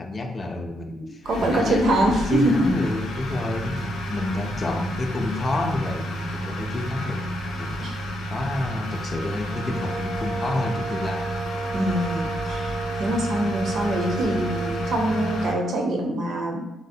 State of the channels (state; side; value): normal; both; correlation 0.78